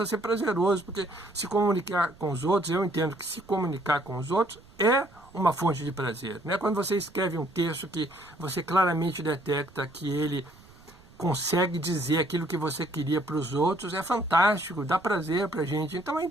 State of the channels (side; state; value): right; noise; rumble, 25 dB below the sound